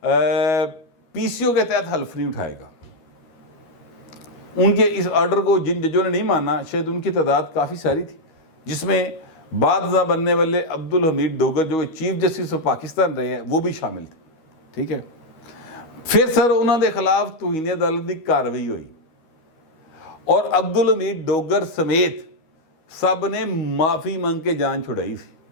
PCO के तहत हल्फ नहीं उठाएगा। उनके इस ऑर्डर को जिन जजों ने नहीं माना, शायद उनकी तादाद काफ़ी सारी थी, जिसमें बादशाह बनने वाले अब्दुल हमीद डोगर जो चीफ जस्टिस ऑफ पाकिस्तान रहे हैं वो भी शामिल थे, ठीक है। फिर सर उन्होंने खिलाफ तौहीन अदालत की कार्रवाई हुई और अब्दुल हमीद डोगर समेत सब ने माफ़ी मांग के जान छुड़ाई थी,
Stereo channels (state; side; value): late; right; 13 ms